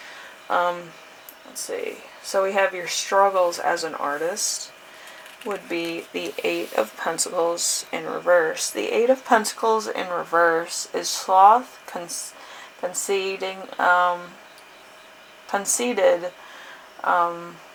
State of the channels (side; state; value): both; identical; correlation 1.00